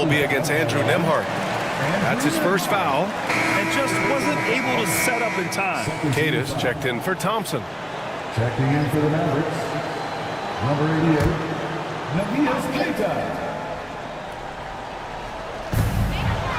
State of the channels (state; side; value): identical; both; correlation 1.00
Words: be against Andrew Nembhard. That's his first foul. And just wasn't able to set up in time. Cadis checked in for Thompson. Checking in for the Mavericks, number 88, Navias Keita.